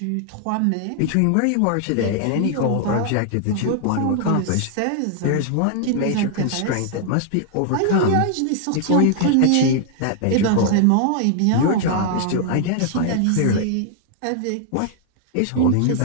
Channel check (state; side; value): different; both; correlation 0.00